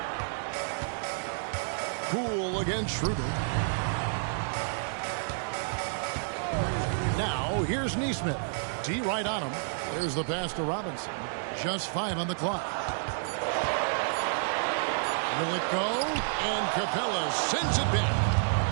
Poole against Schroeder. Now, here's Nesmith. D right on him. There's the pass to Robinson. Just 5 on the clock. Will it go? And Capella sends it back.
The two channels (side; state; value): left; silent; digital silence